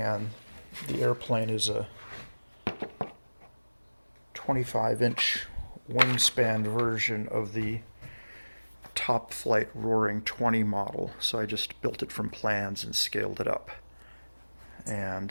the airplane is a 25-inch wingspan version of the Top Flight Roaring 20 model. So I just built it from plans and scaled it up.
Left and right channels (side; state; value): both; inverted; correlation -1.00